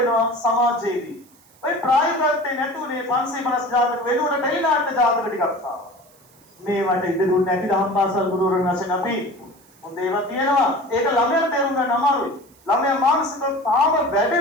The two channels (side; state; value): right; noise; hiss, 29 dB below the sound